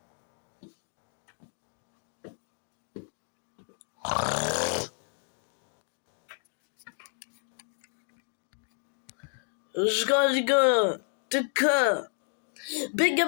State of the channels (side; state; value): right; silent; 57 dB below the other